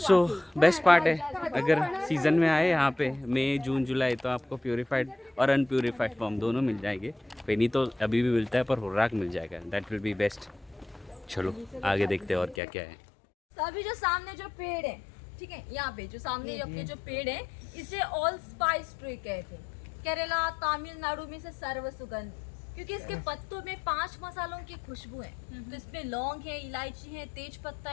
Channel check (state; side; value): drops out; right; at 12.6 s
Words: best part है, अगर सीज़न में आए यहाँ पे मई जून जुलाई तो आपको प्यूरिफाइड और अनप्यूरिफाइड फॉर्म दोनों मिल जाएंगे। फेनी तो अभी भी मिलता है पर हुर्राक मिल जाएगा, दैट विल बी बेस्ट। चलो आगे देखते हैं और क्या क्या है। तो अभी जो सामने जो पेड़ है, ठीक है, यहाँ पे जो सामने अपने जो पेड़ है, इसे ऑल स्पाइस ट्री कहते हैं। केरला तमिलनाडु में से सर्व सुगंध, क्योंकि इसके पत्तों में 5 मसालों की खुशबू है। तो इसमें लौंग है, इलायची है, तेज पत्ता